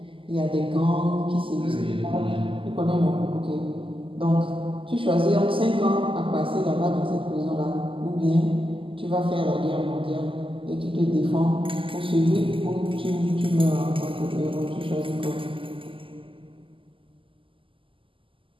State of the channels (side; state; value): left; late; 0.25 ms